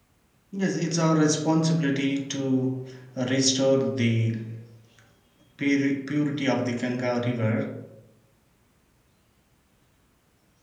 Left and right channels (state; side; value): identical; both; correlation 1.00